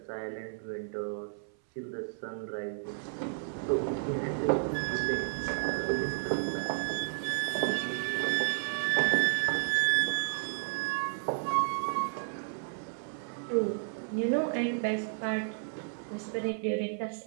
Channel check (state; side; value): silent; left; 56 dB below the other